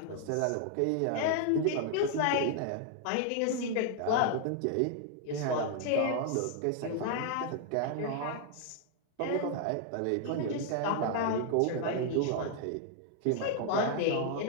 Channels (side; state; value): both; different; correlation 0.00